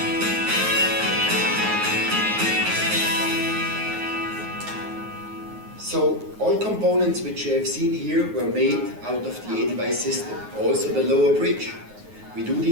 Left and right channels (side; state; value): left; late; 9.5 ms